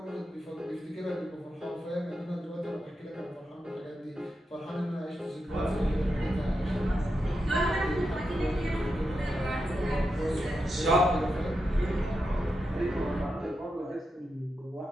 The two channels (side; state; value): both; normal; correlation 0.87